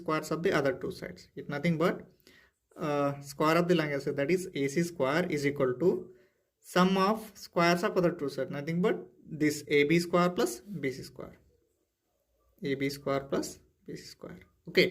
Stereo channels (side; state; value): both; identical; correlation 1.00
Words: of the other two sides. It's nothing but square of the longest side, that is AC square, is equal to sum of squares of other two sides, nothing but this AB square plus BC square. AB square plus BC square.